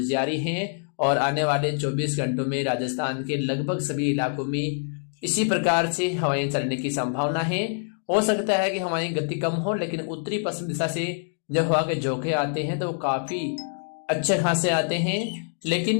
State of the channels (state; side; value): silent; right; digital silence